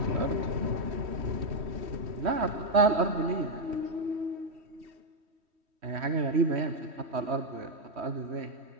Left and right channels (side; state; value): left; late; 3.1 ms